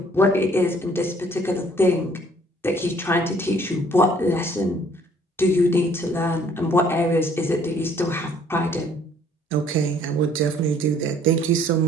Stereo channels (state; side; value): normal; both; correlation 0.60